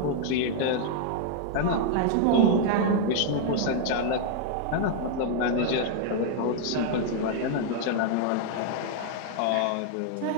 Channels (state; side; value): different; both; correlation -0.01